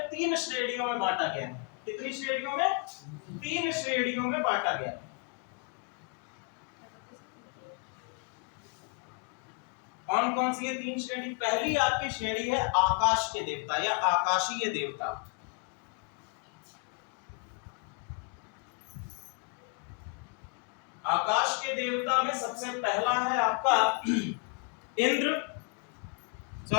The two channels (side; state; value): right; quieter; 32.8 dB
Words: 3 श्रेणियों में बांटा गया है। कितनी श्रेणियों में, 3 श्रेणियों में बांटा गया। कौन कौन सी ये 3 श्रेणी? पहली आपकी श्रेणी है आकाश के देवता या आकाशीय देवता। आकाश के देवता में सबसे पहला है आपका इंद्र,